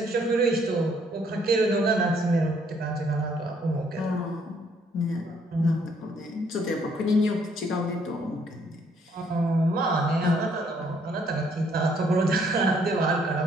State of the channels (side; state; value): both; normal; correlation 0.67